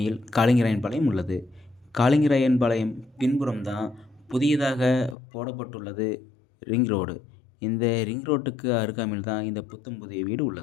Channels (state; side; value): drops out; right; at 5.2 s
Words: காளிங்கராயன்பாளையம் உள்ளது. காளிங்கராயன்பாளையம் பின்புறம் தான் புதியதாக போடப்பட்டுள்ளது ரிங் ரோடு. இந்த ரிங் ரோட்டுக்கு அருகாமையில் தான் இந்த புத்தம் புதிய வீடு